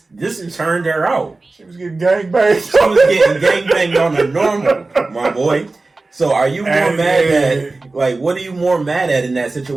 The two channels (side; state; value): left; quieter; 3.4 dB